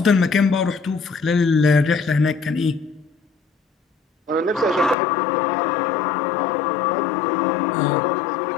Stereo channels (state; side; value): drops out; right; at 5.0 s